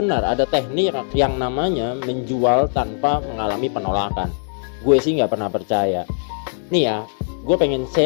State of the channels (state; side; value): silent; right; digital silence